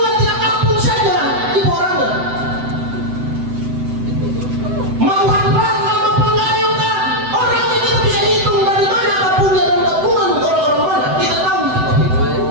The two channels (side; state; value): left; late; 7.9 ms